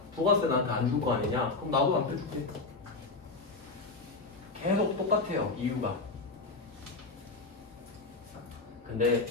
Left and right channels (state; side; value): quieter; right; 3.7 dB